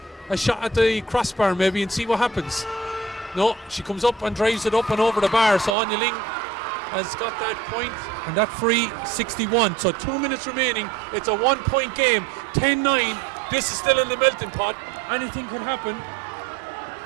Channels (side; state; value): left; drops out; at 5.8 s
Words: shot at the crossbar maybe and see what happens? No, she comes up and drives it up and over the bar. So Anya Ling has got that point, and that free 61. So 2 minutes remaining. It's a 1 point game. 10-9. This is still in the melting pot. Anything could happen.